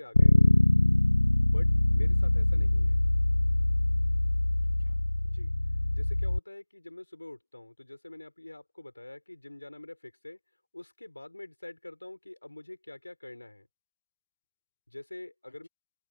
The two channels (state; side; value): inverted; both; correlation -1.00